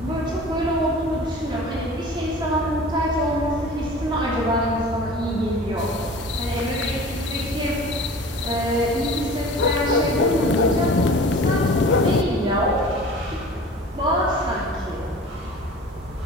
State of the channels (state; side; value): normal; both; correlation 0.41